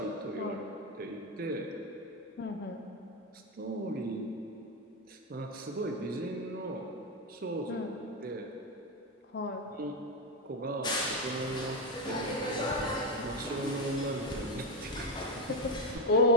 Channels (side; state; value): both; normal; correlation 0.10